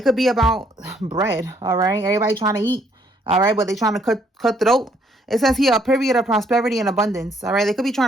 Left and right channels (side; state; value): both; normal; correlation 0.67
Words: could be about bread. All right. Everybody trying to eat. All right. But they trying to cut throat. It says here a period of prosperity and abundance. All right. They could be